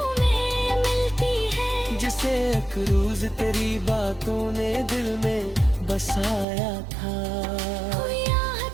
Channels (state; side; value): drops out; left; at 6.5 s